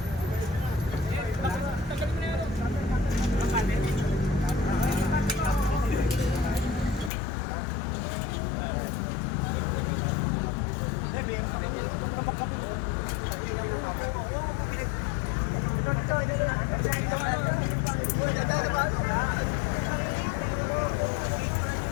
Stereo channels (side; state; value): right; drops out; at 7.1 s